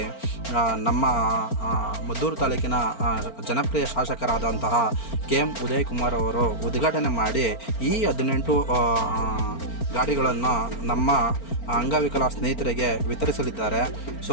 ನಮ್ಮ ಮದ್ದೂರು ತಾಲೂಕಿನ ಜನಪ್ರಿಯ ಶಾಸಕರಾದಂತಹ KM ಉದಯ್ ಕುಮಾರ್ ಅವರು ಉದ್ಘಾಟನೆ ಮಾಡಿ ಈ 18 ಗಾಡಿಗಳನ್ನು ನಮ್ಮ ಅಂಗವಿಕಲ ಸ್ನೇಹಿತರಿಗೆ ವಿತರಿಸಲಿದ್ದಾರೆ. ಸೊ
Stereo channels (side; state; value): right; late; 4.4 ms